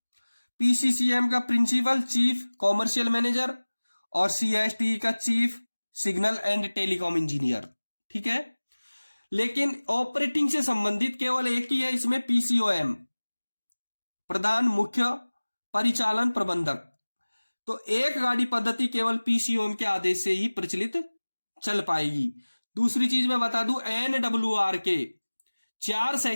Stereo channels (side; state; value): both; inverted; correlation -1.00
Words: PCCM का प्रिंसिपल चीफ कॉमर्शियल मैनेजर और CSTE का chief signal and telecom engineer. ठीक है। लेकिन ऑपरेटिंग से संबंधित केवल एक ही है इसमें, PCOM, प्रधान मुख्य परिचालन प्रबंधक। तो एक गाड़ी पद्धति केवल PCOM के आदेश से ही प्रचलित चल पाएगी। दूसरी चीज मैं बता दूं, NWR के 4